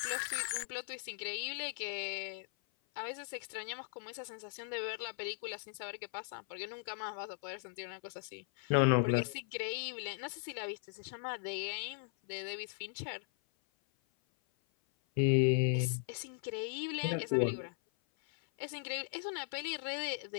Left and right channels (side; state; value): right; silent; 52 dB below the other